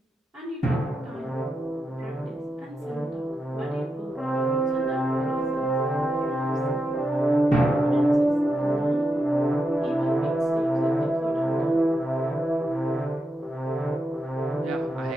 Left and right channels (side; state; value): both; normal; correlation 0.87